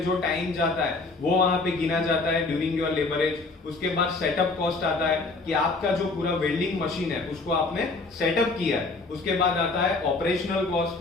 जो टाइम जाता है वो वहां पे गिना जाता है ड्यूरिंग योर लेबरेज. उसके बाद सेटअप कॉस्ट आता है कि आपका जो पूरा वेल्डिंग मशीन है उसको आपने सेटअप किया है. उसके बाद आता है ऑपरेशनल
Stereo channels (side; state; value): right; quieter; 3.6 dB